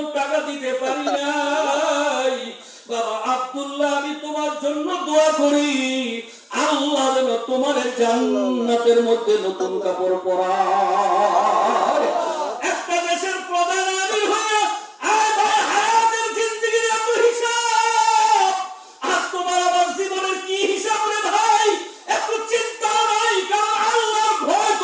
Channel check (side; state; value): both; identical; correlation 1.00